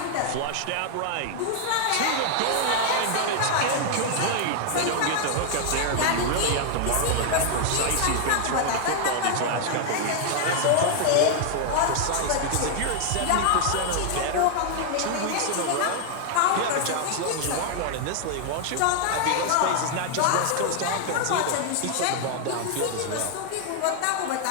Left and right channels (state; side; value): different; both; correlation 0.00